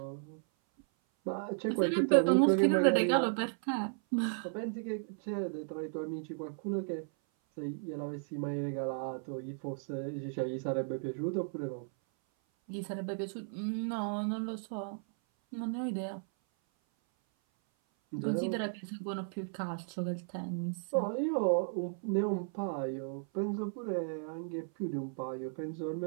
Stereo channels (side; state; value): left; silent; 55 dB below the other